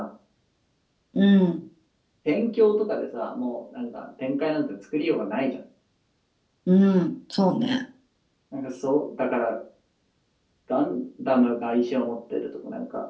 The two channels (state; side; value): identical; both; correlation 1.00